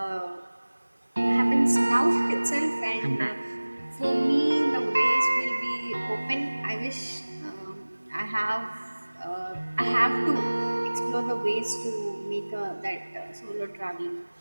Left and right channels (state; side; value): inverted; both; correlation -1.00